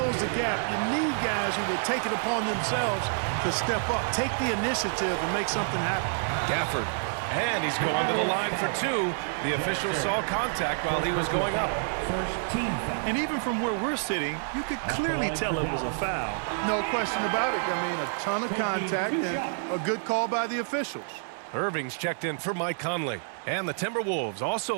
the gap, you need guys who will take it upon themselves to step up, take the initiative, and make something happen. Gafford. And he's going to the line for two. The official saw contact while he was going up. First team foul. And even from where we're sitting, you could clearly tell it was a foul. No question about it. I mean, a ton of contact and a good call by the officials. Irving's checked in for Mike Conley. And the Timberwolves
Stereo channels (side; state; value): left; silent; 59 dB below the other